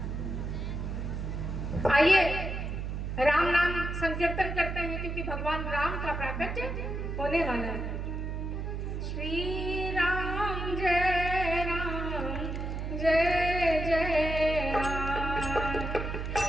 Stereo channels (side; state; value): right; noise; hum, 4 dB below the sound